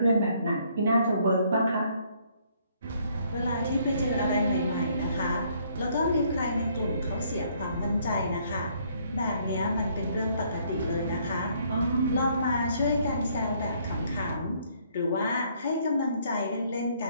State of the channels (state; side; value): inverted; both; correlation -0.66